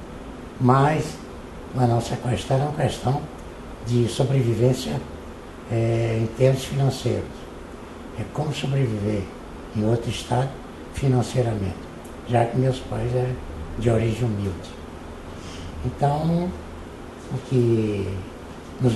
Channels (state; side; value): identical; both; correlation 1.00